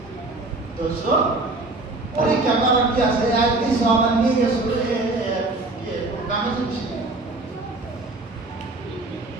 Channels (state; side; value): quieter; left; 3.0 dB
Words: দোষ পরীক্ষা করার কি আছে? আর কিছু আমার নিয়ে গেছে কামে চলছে।